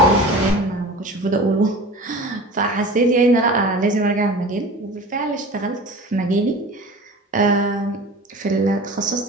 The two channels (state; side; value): normal; both; correlation 0.37